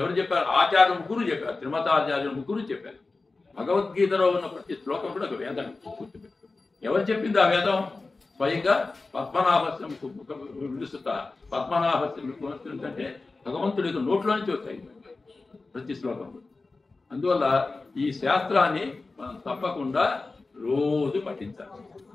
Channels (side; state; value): right; quieter; 3.6 dB